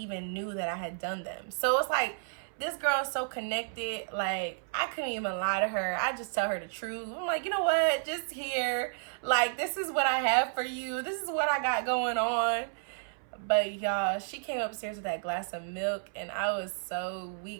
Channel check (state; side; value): silent; left; 57 dB below the other